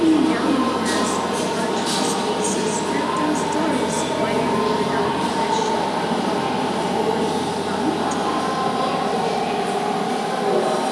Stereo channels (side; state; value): both; identical; correlation 1.00